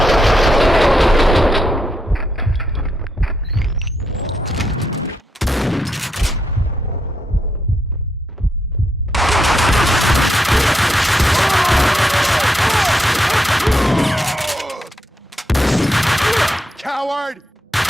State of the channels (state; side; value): normal; both; correlation 0.80